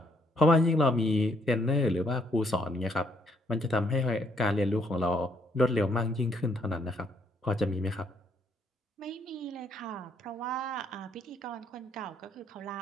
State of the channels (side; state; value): both; normal; correlation 0.70